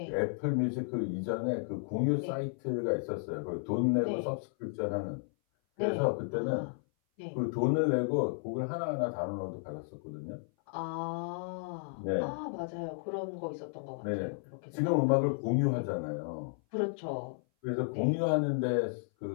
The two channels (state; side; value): silent; right; 56 dB below the other